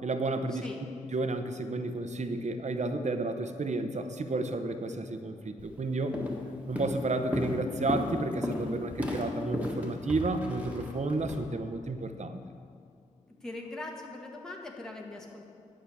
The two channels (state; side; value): normal; both; correlation 0.67